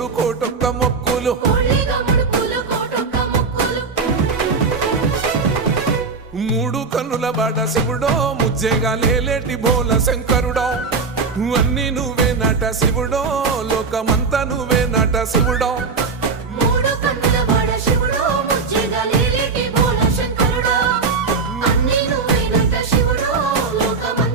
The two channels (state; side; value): quieter; left; 4.7 dB